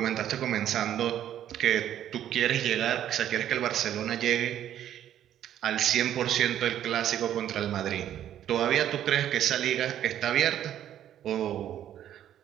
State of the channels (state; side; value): quieter; left; 11.1 dB